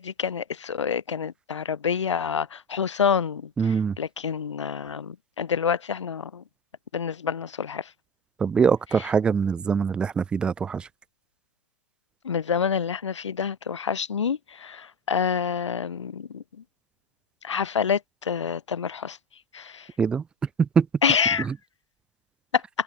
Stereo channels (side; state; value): both; normal; correlation 0.23